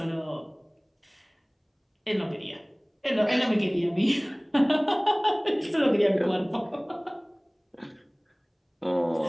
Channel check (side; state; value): both; identical; correlation 1.00